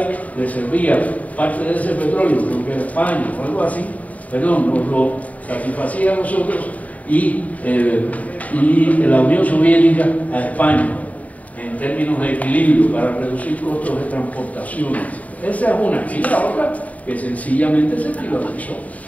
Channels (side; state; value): right; late; 0.071 ms